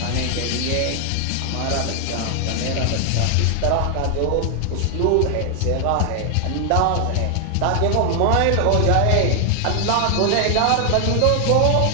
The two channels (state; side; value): different; both; correlation 0.00